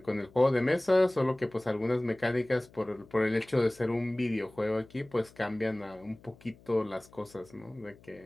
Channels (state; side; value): noise; left; hum, 25 dB below the sound